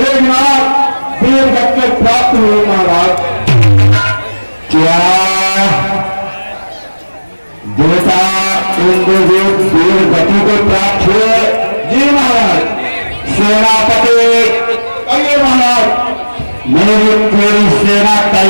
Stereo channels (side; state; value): both; inverted; correlation -1.00